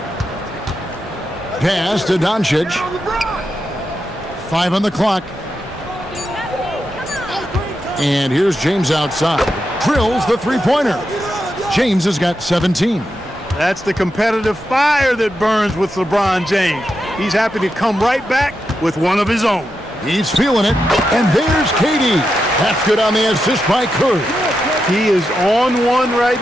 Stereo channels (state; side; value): normal; both; correlation 0.86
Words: Pass to Doncic. 5 on the clock. And here's James outside. Drills the 3-pointer. James has got 17. That's the competitive fire that burns with LeBron James. He's happy to come right back with one of his own. He's feeling it. And there's KD. That's good on the assist by Curry. He is on one right